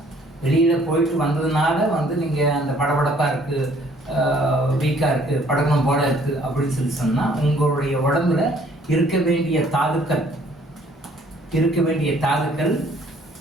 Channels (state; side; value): normal; both; correlation 0.60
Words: வெளியில் போயிட்டு வந்ததுனால வந்து நீங்கள் அந்த படபடப்பாக இருக்குது, வீக்காக இருக்குது, படகணும் போல இருக்குது அப்படின்னு சொல்லி சொன்னால் உங்களுடைய உடம்புல இருக்க வேண்டிய தாதுக்கள்